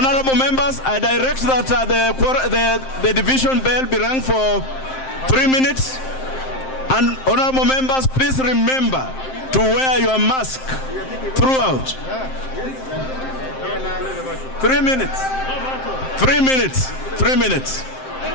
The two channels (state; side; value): late; right; 7.6 ms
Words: I direct that the division bell be rung for 3 minutes. And honorable members, please remember to wear your mask throughout. 3 minutes. 3 minutes. 3 minutes.